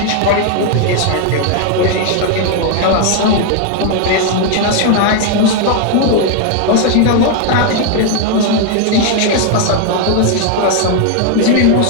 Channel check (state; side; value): different; both; correlation 0.00